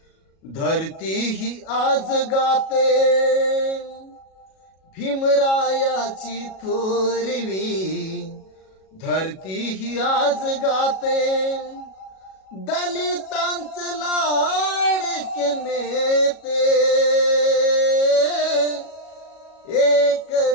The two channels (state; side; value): late; right; 37 ms